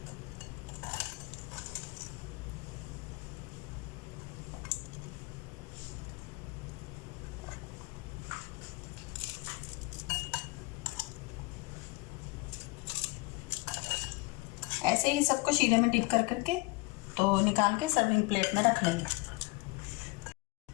ऐसे ही सबको शीरे में डिप कर करके तो निकाल के सर्विंग प्लेट में रख लेंगे।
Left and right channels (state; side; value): quieter; right; 24.3 dB